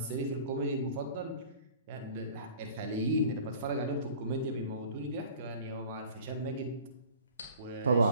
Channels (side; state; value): both; inverted; correlation -0.46